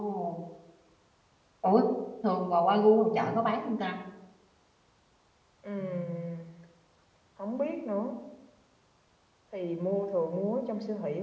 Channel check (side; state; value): both; identical; correlation 1.00